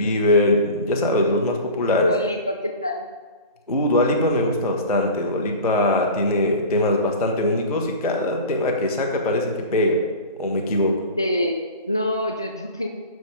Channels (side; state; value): both; inverted; correlation -0.35